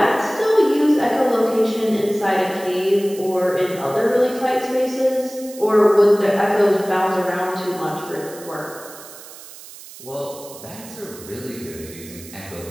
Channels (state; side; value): noise; right; hiss, 17 dB below the sound